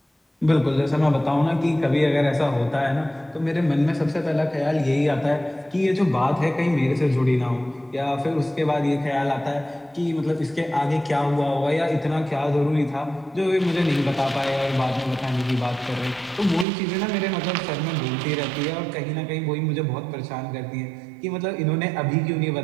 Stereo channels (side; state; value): left; drops out; at 16.7 s